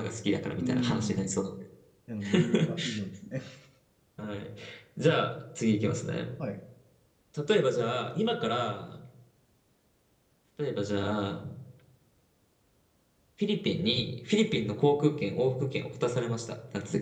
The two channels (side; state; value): both; identical; correlation 1.00